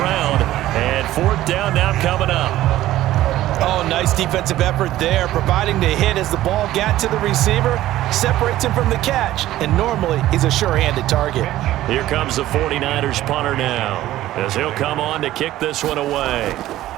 And 4th down now coming up. Oh, nice defensive effort there, providing the hit as the ball got to the receiver, separates him from the catch, and normally he's a sure-handed target. Here comes the 49ers punter now, as he'll come on to kick this one away.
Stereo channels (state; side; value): quieter; left; 14.7 dB